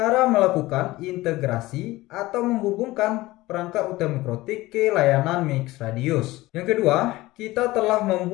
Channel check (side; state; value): right; quieter; 18.7 dB